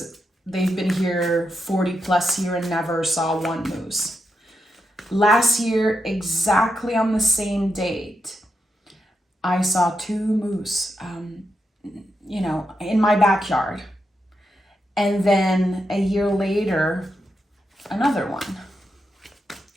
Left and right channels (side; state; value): both; normal; correlation 0.85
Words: they've been here 40 plus years and never saw one moose. Last year, exactly on the same date, I saw two moose, in my backyard. And then a year later, another one.